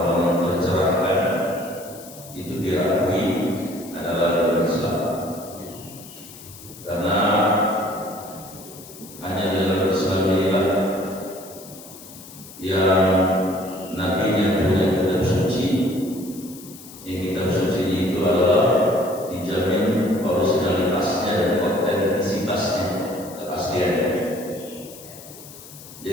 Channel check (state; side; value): noise; left; hiss, 17 dB below the sound